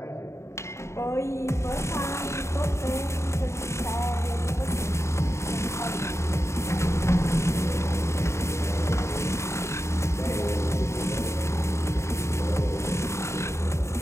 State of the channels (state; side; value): late; right; 0.14 ms